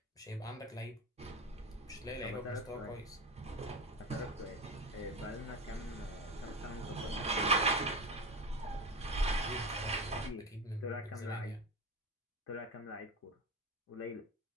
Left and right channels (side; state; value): both; normal; correlation 0.23